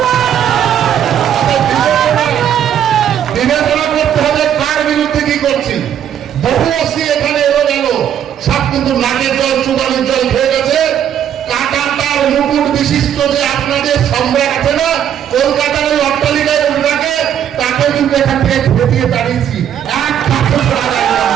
বিবেচনা করতে হবে কার বিরুদ্ধে কি করছি। বহু অসি এখানে এলো গেল, সব কিন্তু নাকের জল চুবালির জল খেয়ে গেছে। কাঁটাতার মুকুট বিশিষ্ট যে আপনাদের সম্রাট আছে না, কলকাতার ওই অট্টালিকায় উঠে তাকে কিন্তু এখান থেকে ছেড়ে দিয়ে দাঁড়িয়েছি। এক কাছে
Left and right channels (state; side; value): quieter; left; 9.6 dB